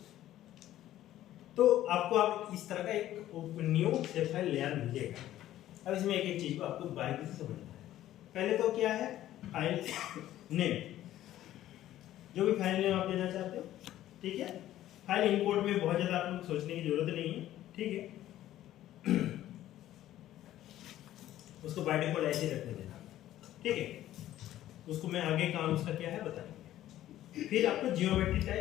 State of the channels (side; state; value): right; quieter; 13.4 dB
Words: तो आपको आप इस तरह का एक न्यू शेप फाइल लेयर मिलेगा। अब इसमें एक एक चीज को आपको बारीकी से समझना है। पहले तो क्या है, फाइल नेम, जो भी फाइल नेम आप देना चाहते हो, ठीक है। फाइल इंपोर्ट में बहुत ज्यादा आप लोग सोचने की जरूरत नहीं है, ठीक है। उसको बाय डिफॉल्ट ऐसे रखने देना, ठीक है। उसको मैं आगे काम उसका क्या है बताएंगे। फिर आपको जियोमेट्री